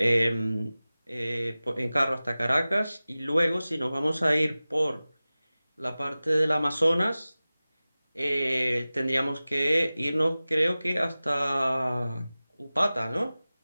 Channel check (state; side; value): inverted; both; correlation -0.97